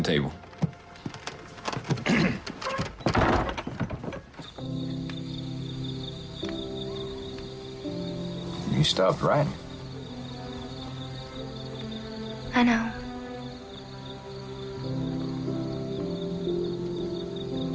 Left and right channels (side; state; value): both; identical; correlation 1.00